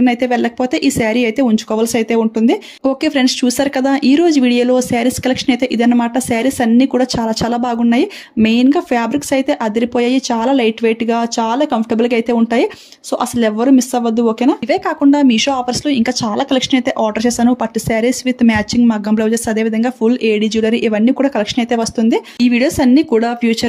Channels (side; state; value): both; identical; correlation 1.00